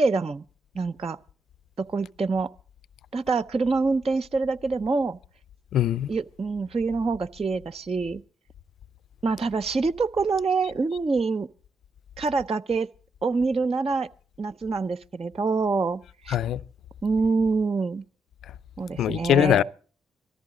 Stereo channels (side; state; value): both; normal; correlation 0.78